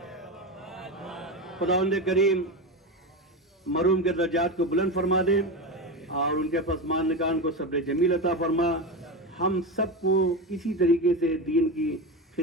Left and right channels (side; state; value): both; normal; correlation 0.19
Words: خداوند کریم مرحوم کے درجات کو بلند فرما دے اور ان کے پسماندگان کو صبر جمیل عطا فرما. ہم سب کو اسی طریقے سے دین کی